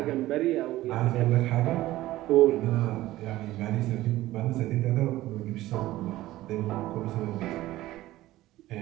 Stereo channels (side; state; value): left; quieter; 16.2 dB